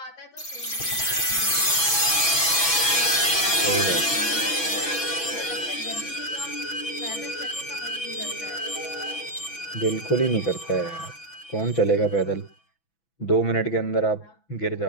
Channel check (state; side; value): late; right; 6.1 ms